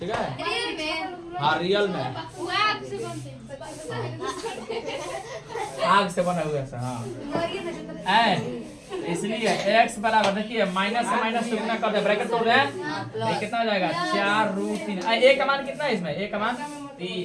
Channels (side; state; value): both; identical; correlation 1.00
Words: है। रियल में हाँ रियल में आग से बनते आग से बना हुआ है हाँ। इसलिए x बराबर देखिए माइनस से माइनस से गुना कर दे, ब्रैकेट तोड़ रहे हैं, ये कितना हो जाएगा 4√3। a का मान कितना है इसमें, a का मान